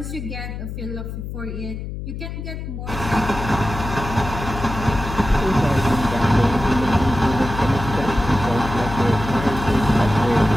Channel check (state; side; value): noise; left; hum, 7 dB below the sound